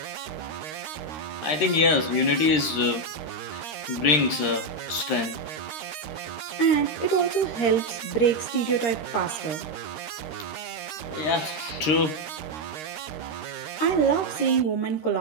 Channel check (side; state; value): right; late; 13 ms